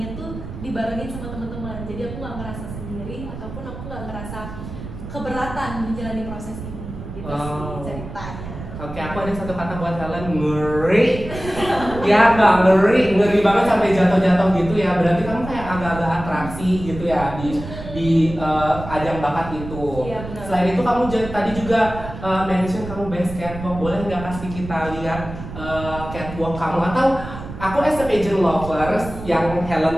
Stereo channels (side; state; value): right; noise; rumble, 10 dB below the sound